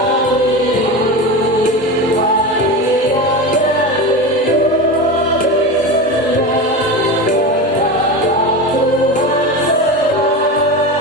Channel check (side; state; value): both; normal; correlation 0.24